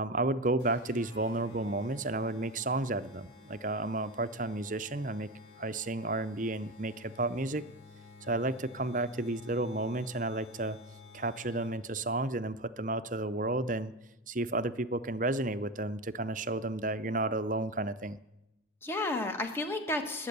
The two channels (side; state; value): both; normal; correlation 0.23